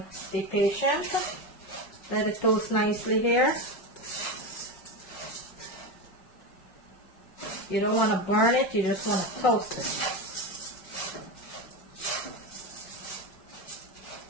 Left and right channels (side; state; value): right; late; 5.5 ms